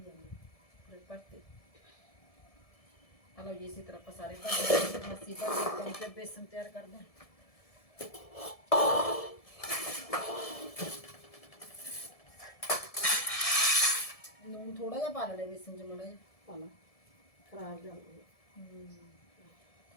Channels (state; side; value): late; right; 1.7 ms